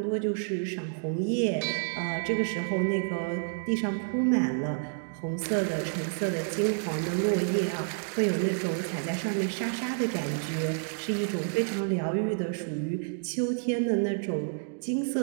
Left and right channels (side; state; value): left; silent; digital silence